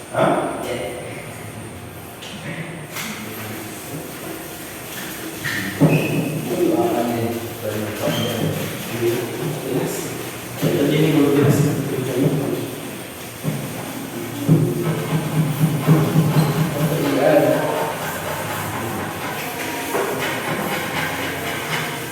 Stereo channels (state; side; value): identical; both; correlation 1.00